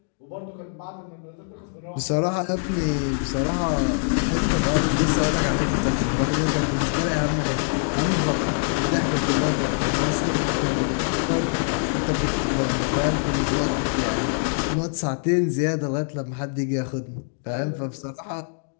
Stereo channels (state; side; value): silent; right; 63 dB below the other